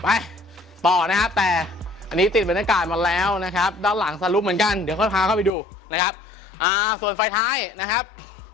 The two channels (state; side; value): drops out; right; at 5.5 s